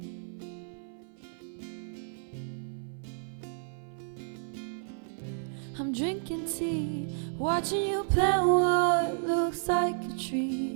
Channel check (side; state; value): left; silent; 57 dB below the other